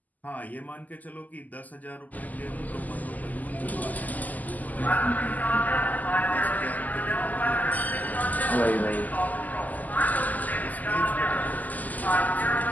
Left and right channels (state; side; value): late; right; 0.080 ms